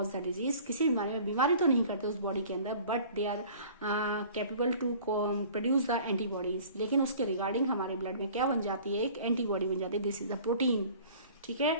the disease. किसी बीमारी में बीमारी तो नहीं करते उस बॉडी के अंदर, but they are capable to produce the antibodies. लेकिन उसके रिगार्डिंग हमारे ब्लड में क्या बन जाती है, एक एंटीबॉडी बन जाती है, दिस इज द प्रोटीन। ठीक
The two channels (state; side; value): inverted; both; correlation -0.47